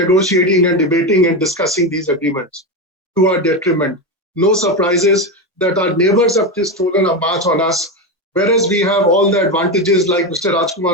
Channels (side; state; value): both; normal; correlation 0.14